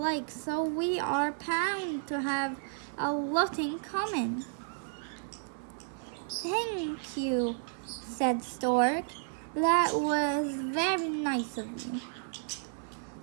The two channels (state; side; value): silent; left; digital silence